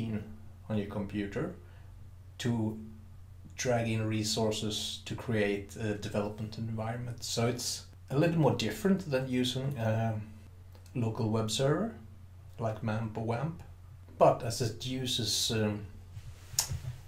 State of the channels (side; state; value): both; identical; correlation 1.00